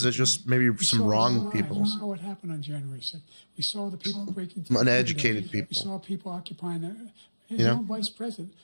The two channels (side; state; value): both; inverted; correlation -1.00